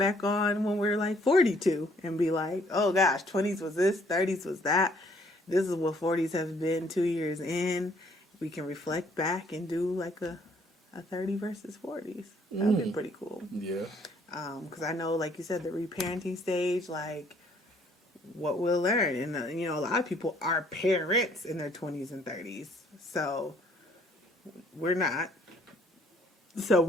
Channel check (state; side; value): normal; both; correlation 0.63